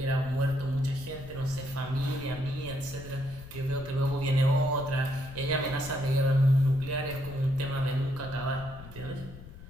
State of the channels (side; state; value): left; noise; rumble, 15 dB below the sound